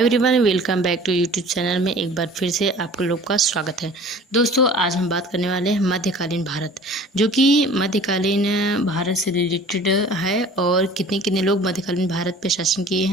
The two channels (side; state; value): both; normal; correlation 0.46